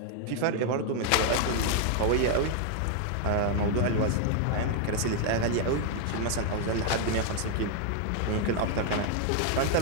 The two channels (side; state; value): both; different; correlation 0.00